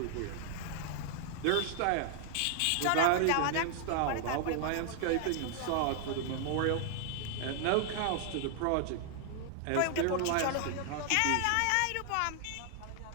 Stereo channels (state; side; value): different; both; correlation 0.00